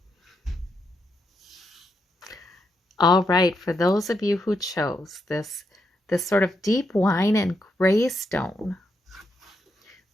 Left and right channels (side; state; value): both; normal; correlation 0.81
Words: All right, for those of you who chose this sort of deep wine and gray stone,